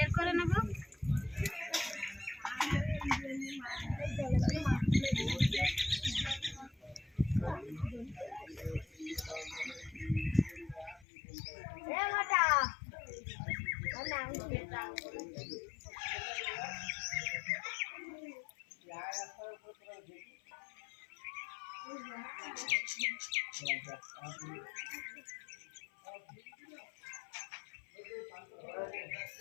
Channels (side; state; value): right; drops out; at 11.1 s